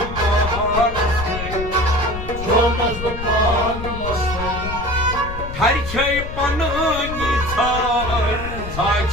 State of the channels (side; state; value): left; noise; rumble, 8 dB below the sound